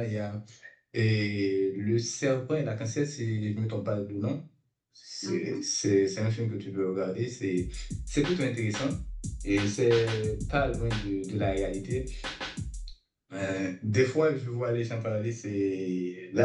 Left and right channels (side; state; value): both; identical; correlation 1.00